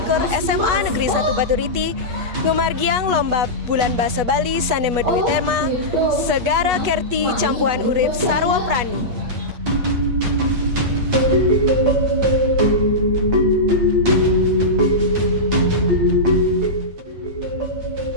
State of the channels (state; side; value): late; left; 8.2 ms